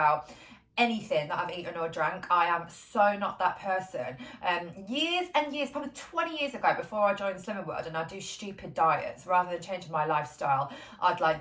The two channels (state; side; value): identical; both; correlation 1.00